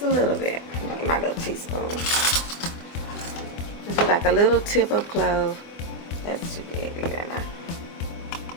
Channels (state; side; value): late; right; 24 ms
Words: a little bit. My little teaspoon. This is like a little tip of clove. That's too big. Look at that